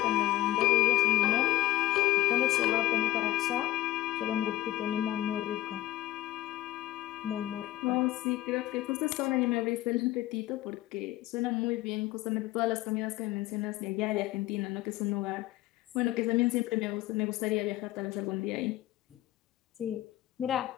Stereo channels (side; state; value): right; quieter; 15.7 dB